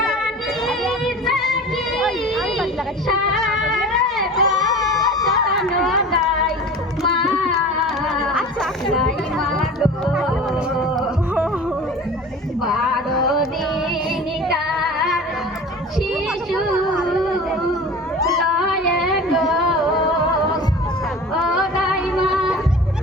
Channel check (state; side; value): normal; both; correlation 0.38